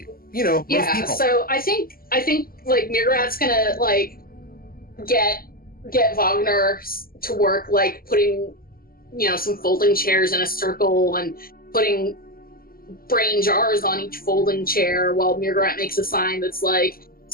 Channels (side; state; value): right; late; 0.42 ms